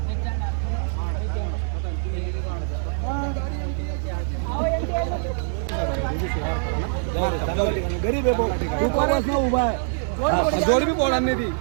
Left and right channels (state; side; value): silent; left; digital silence